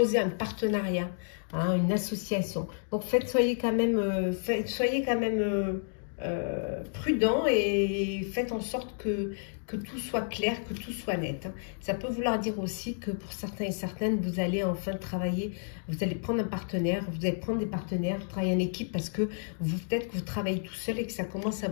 un partenariat, hein, une association. Donc soyez quand même, prudents et faites en sorte que tout soit clair, que tout soit net. Hein. Ça peut vouloir dire aussi que pour certains et certaines, vous allez enfin travailler, vous allez prendre un partenaire, vous allez prendre des partenaires, travailler en équipe parce que peut-être que vous travaillez tout seul et que ça commence à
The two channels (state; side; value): silent; right; digital silence